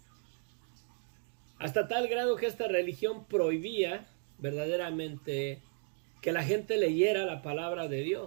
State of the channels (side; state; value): left; silent; 55 dB below the other